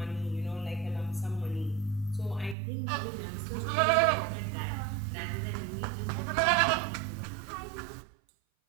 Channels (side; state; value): left; drops out; at 2.6 s